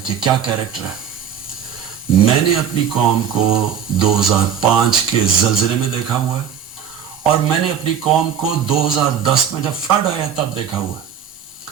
کہ کیا کیریکٹر ہے. میں نے اپنی قوم کو 2005 کے زلزلے میں دیکھا ہوا ہے, اور میں نے اپنی قوم کو 2010 میں جب فلڈ آیا تب دیکھا ہوا ہے.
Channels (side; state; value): left; quieter; 8.3 dB